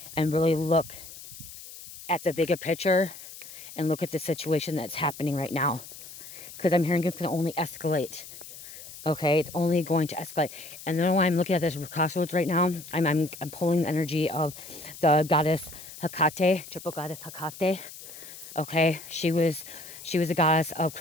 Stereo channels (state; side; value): noise; left; hiss, 15 dB below the sound